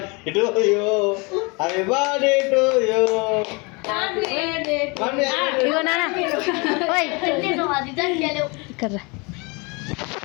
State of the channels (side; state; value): right; quieter; 29.1 dB